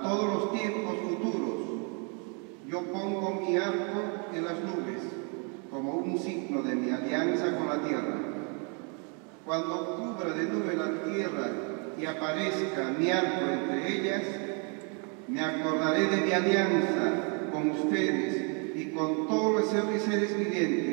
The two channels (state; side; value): quieter; left; 37.2 dB